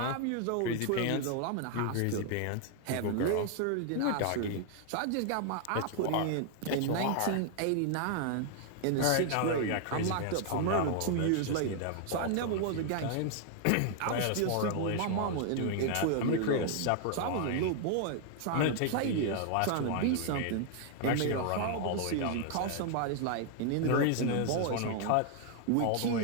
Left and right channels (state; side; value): different; both; correlation 0.00